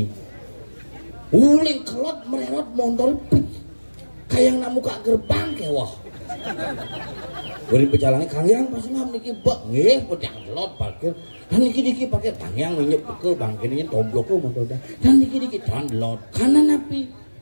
Uling kelot mererot montol pit kayang namu kak gerbang kewah. Beri pejalannya kalian pas ngam niki bak nggih pedang kelot parkir. Dan niki diki pakai tangyang nyep ke bangkirnya tomblok montol dah. Dan niki diki download karena napi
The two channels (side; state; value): both; inverted; correlation -1.00